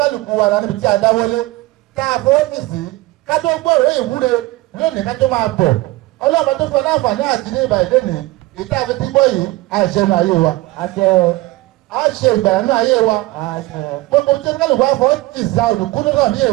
wa níbi tí a dáwọ́lé ká fọ́ọ́fìsì ká tó gbọ́ òwe ìwúre lónìí ká tó máa bọ̀ ọlọ́run tó fún láǹfààní àti ní ìbà ìdé ní ìta àfi tí gbọ́ yìí àṣẹ nù ayé wa a ṣe ìgbà nù ayé wa gbogbo tí oníkálukú wa fọ́ ti sa olùkúlù náà ní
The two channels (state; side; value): quieter; left; 19.6 dB